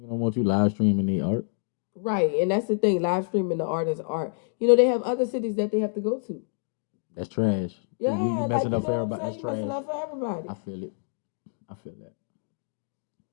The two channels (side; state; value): right; silent; digital silence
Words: don't want you live streaming the art. Right, and that's the thing. Live streaming the artist's art. They have other cities that they have to go to. That's trash. Yeah, you messing up for everybody. That's trash. Messing up for everybody. I feel it. I feel that.